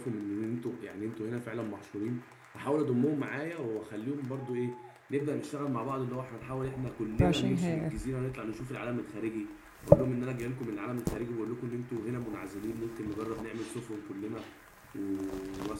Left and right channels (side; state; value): both; identical; correlation 1.00